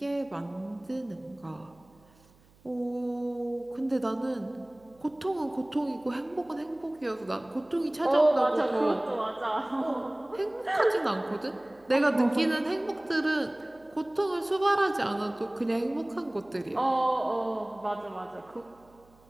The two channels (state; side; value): noise; right; hum, 29 dB below the sound